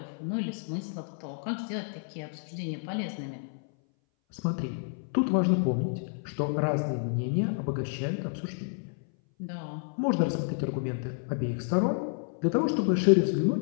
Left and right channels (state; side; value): silent; right; 58 dB below the other